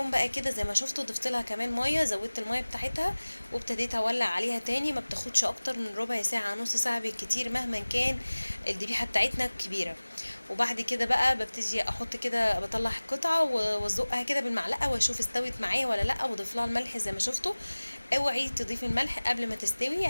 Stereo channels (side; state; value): both; inverted; correlation -1.00